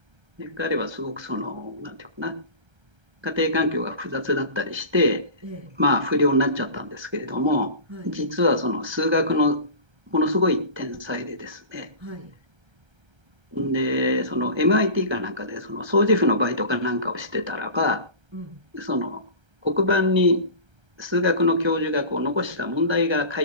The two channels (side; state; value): left; late; 1.3 ms